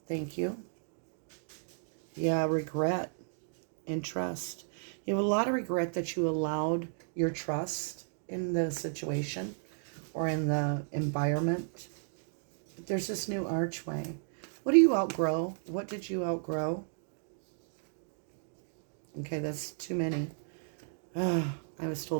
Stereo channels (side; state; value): left; silent; digital silence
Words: thank you. Yeah, regret and trust. You have a lot of regret that you allowed your trust in the situation or in the environment. But there's this new archway. What do you outgrow? What did you outgrow? Okay, that's too many. I was